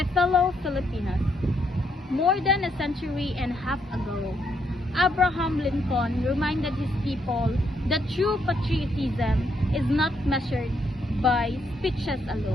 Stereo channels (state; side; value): normal; both; correlation 0.75